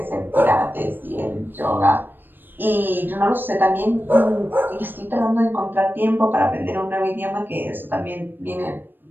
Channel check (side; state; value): left; late; 0.094 ms